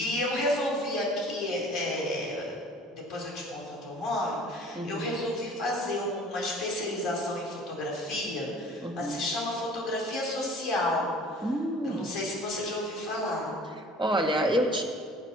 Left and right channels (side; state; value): both; normal; correlation 0.47